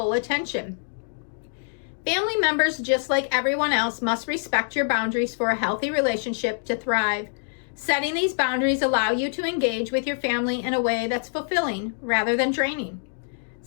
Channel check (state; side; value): silent; right; digital silence